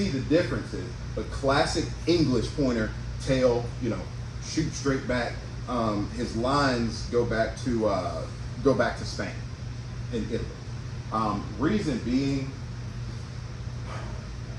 the differences. A classic English pointer, tail, shoot straight back. His lines go back to Spain and Italy. Reason being,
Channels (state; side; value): identical; both; correlation 1.00